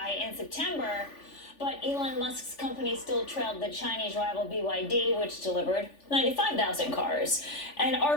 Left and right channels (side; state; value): right; late; 3.4 ms